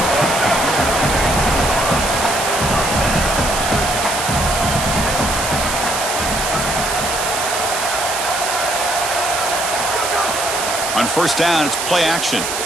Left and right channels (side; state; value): right; noise; hiss, 3 dB below the sound